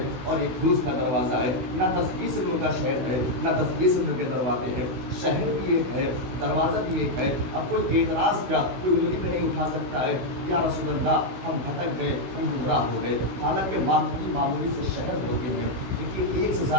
اور ایک روز کا دروازہ ہے، نہ 10-20 علم کا شہر ہے نہ 10-20 علم کے دروازے ہیں. شہر بھی ایک ہے، دروازہ بھی ایک ہے. اب کوئی اعتراض کیا کوئی انگلی پہ نہیں اٹھا سکتا ہے یا رسول اللہ ہم بھٹک گئے، ہم گمراہ ہو گئے. حالانکہ معمولی سے شہر ہوتے ہیں جن کے ایک سے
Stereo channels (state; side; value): late; left; 16 ms